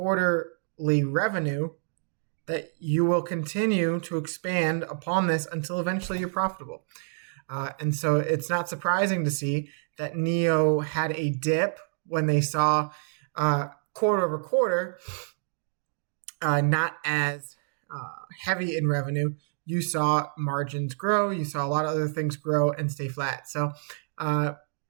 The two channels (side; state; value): left; silent; digital silence